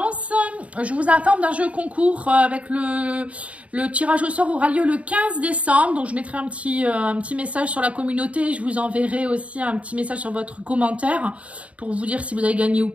je vous informe d'un jeu concours avec le tirage au sort aura lieu le 15 décembre. Donc je mettrai un petit message sur la communauté. Je vous enverrai aussi un petit message sur votre commentaire pour vous dire si vous avez gagné ou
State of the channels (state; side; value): late; left; 0.065 ms